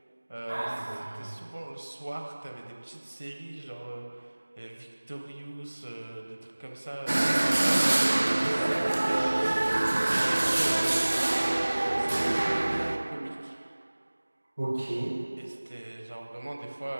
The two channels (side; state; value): both; inverted; correlation -1.00